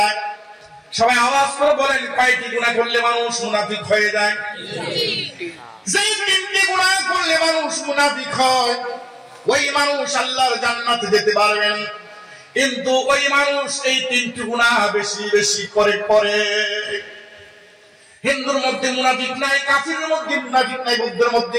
সবাই আওয়াজ করে বলেন, কয়টি গুনাহ করলে মানুষ মুনাফিক হয়ে যায়? যে তিনটি গুনাহ করলে মানুষ মুনাফিক হয়, ওই মানুষ আল্লাহর জান্নাতে যেতে পারবেন। কিন্তু ওই মানুষ এই তিনটি গুনাহ বেশি বেশি করে। হিন্দুর মধ্যে মুনাফিক নাই, কাফিরের মধ্যে মুনাফিক নাই, বৌদ্ধের মধ্যে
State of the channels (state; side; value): identical; both; correlation 1.00